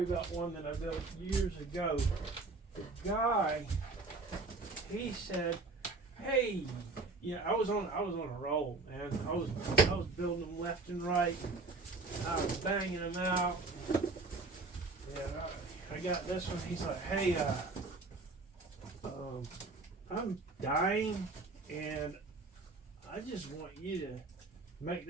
about one that I built years ago. The guy, he said, "Hey, yeah, I was on a roll, man. I was building them left and right. I was banging them out. And I got this one. He's like, hey, I'm dying, and I just want you to make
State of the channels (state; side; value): quieter; left; 3.7 dB